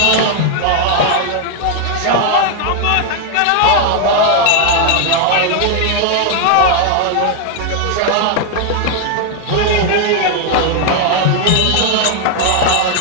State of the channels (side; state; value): both; different; correlation 0.00